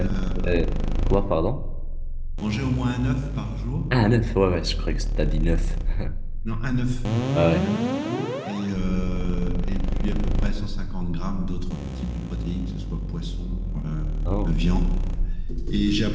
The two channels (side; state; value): both; identical; correlation 1.00